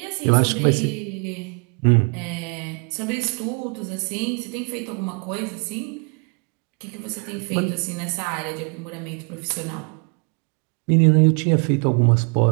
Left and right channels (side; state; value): left; quieter; 35.9 dB